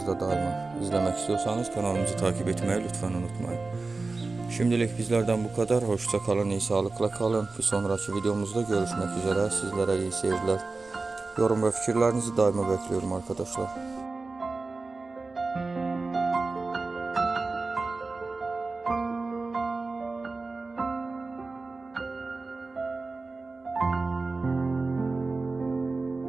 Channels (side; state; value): left; quieter; 3.7 dB